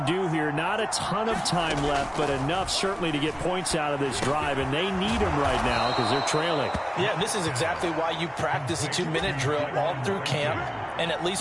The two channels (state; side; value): identical; both; correlation 1.00